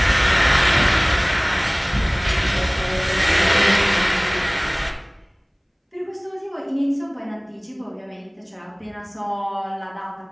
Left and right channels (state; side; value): identical; both; correlation 1.00